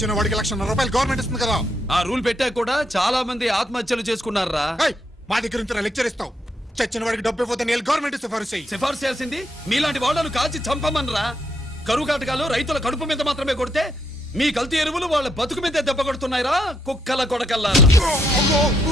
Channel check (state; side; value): normal; both; correlation 0.76